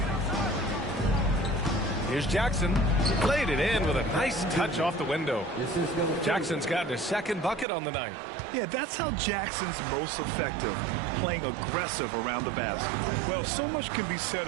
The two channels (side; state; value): left; drops out; at 7.7 s